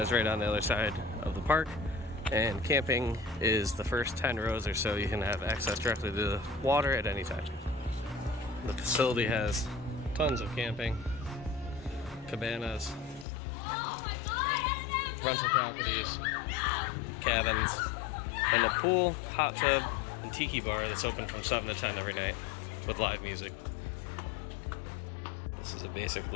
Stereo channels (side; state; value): right; drops out; at 13.2 s